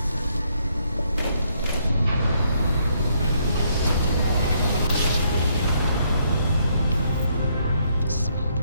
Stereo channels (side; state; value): both; inverted; correlation -0.72